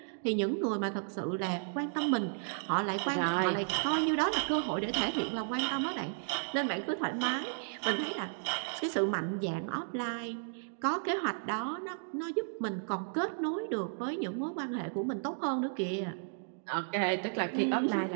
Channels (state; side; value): silent; left; digital silence